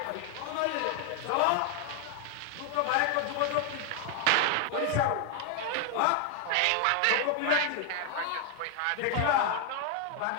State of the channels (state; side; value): different; both; correlation 0.00